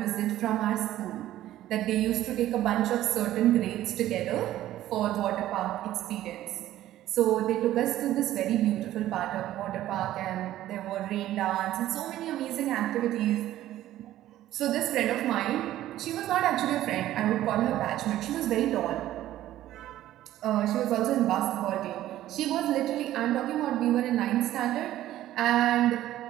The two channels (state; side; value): quieter; left; 13.7 dB